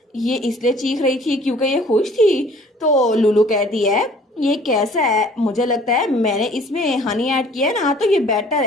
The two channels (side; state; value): both; normal; correlation 0.53